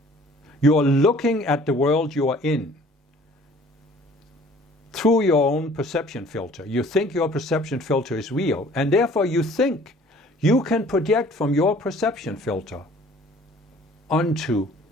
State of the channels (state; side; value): normal; both; correlation 0.53